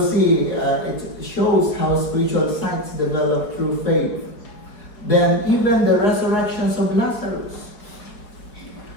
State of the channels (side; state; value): right; late; 4.7 ms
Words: see, it shows how spiritual sights develop through faith. Then even the resurrections of Lazarus.